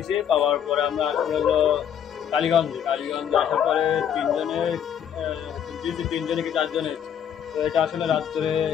পাওয়ার পরে আমরা হলো কালীগঞ্জে আসার পরে তিনজনে কি 4জনে। তো এটা আসলে রাত্রে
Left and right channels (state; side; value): quieter; right; 8.9 dB